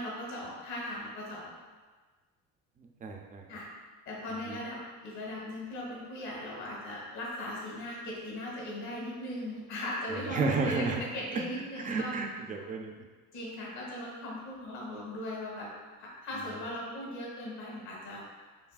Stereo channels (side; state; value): both; normal; correlation 0.33